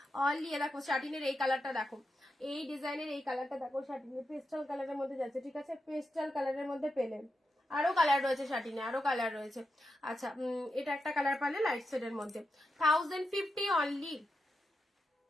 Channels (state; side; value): normal; both; correlation 0.88